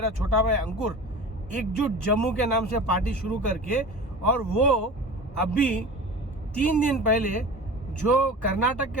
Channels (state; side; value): normal; both; correlation 0.35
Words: छोटा भाई अंकुर, एकजुट जम्मू के नाम से पार्टी शुरू करके, और वो अभी 3 दिन पहले जो कर्नाटक के